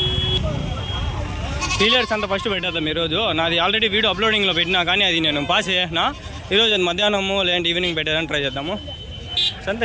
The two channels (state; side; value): identical; both; correlation 1.00